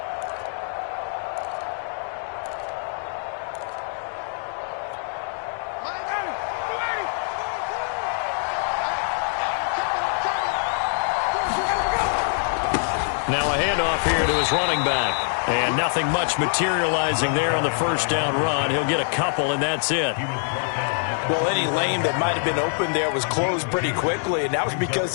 Now a handoff here to his running back. And nothing much materializing there on the first down run. He'll get a couple, and that's it. Well, any lane that might have been open there was closed pretty quickly, and that was because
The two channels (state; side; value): silent; right; 62 dB below the other